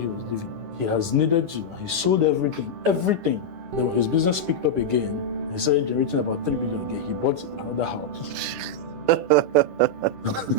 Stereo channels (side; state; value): left; late; 10 ms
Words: was living. He has needed to and he sold everything. Then when his business picked up again, he started generating about 3 billion again. He bought another house.